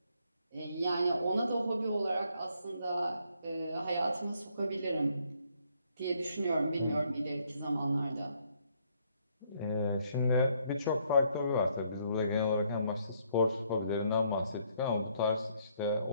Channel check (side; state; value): both; inverted; correlation -0.70